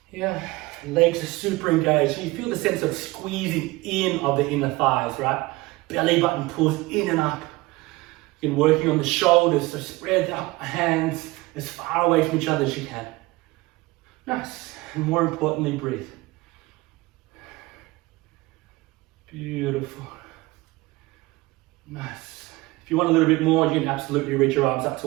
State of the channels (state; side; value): quieter; left; 21.2 dB